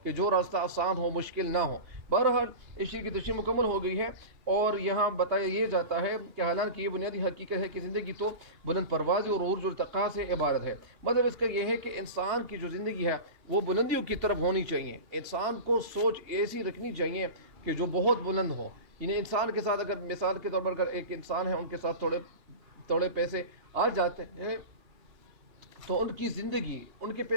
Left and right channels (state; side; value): late; left; 2.9 ms